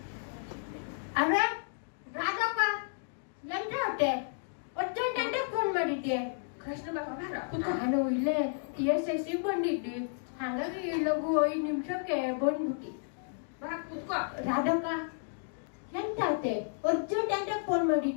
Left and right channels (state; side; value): silent; right; digital silence